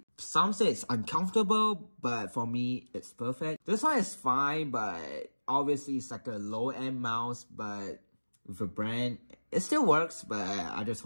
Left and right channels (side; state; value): both; inverted; correlation -1.00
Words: some say it's uncomfortable, but for me, it's perfect. This one is fine, but obviously it's like a low-end mouse, but with a brand, it still works, but I just